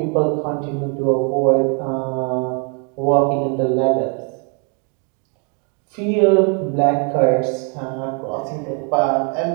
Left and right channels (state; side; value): quieter; left; 36.6 dB